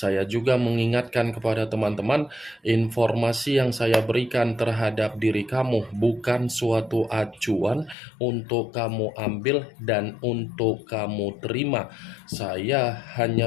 juga mengingatkan kepada teman-teman, informasi yang saya berikan terhadap diri kamu bukan suatu acuan untuk kamu ambil dan untuk kamu terima. Saya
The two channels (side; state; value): right; drops out; at 8.0 s